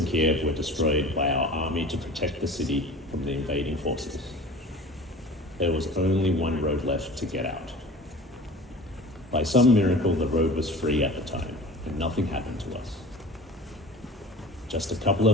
Kiev were destroyed by our army to protect the city from the invading forces. There was only one road left to get out. By some miracle, the road was free at the time, and nothing happened to us. Just a couple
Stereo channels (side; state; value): both; normal; correlation 0.40